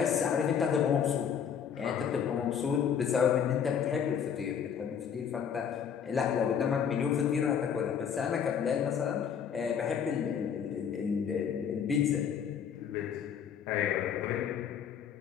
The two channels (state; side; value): quieter; right; 7.8 dB